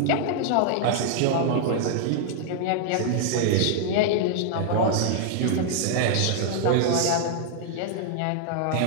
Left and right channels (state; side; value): different; both; correlation -0.01